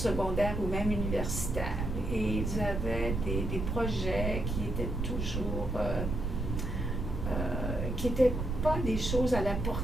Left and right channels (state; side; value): noise; right; rumble, 2 dB below the sound